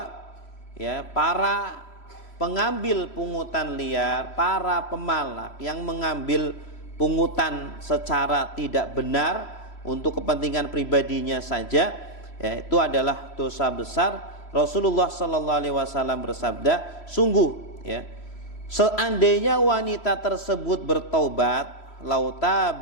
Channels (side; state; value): right; late; 3.0 ms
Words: ya para pengambil pungutan liar, para pemalak yang mengambil pungutan secara tidak benar untuk kepentingan pribadinya saja, ya, itu adalah dosa besar. Rasulullah sallallahu alaihi wasallam bersabda, sungguh ya, seandainya wanita tersebut bertaubat, lau